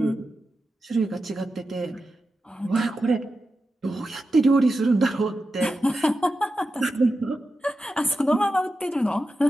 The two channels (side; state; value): both; normal; correlation 0.91